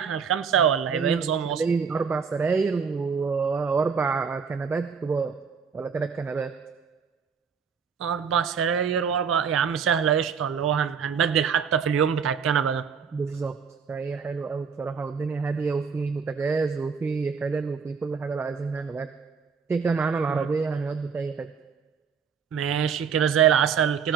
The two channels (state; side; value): quieter; left; 6.4 dB